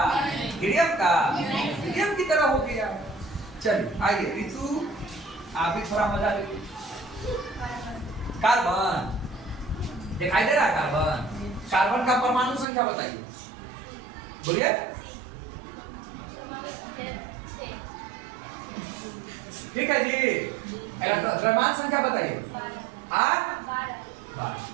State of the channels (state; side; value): drops out; left; at 12.7 s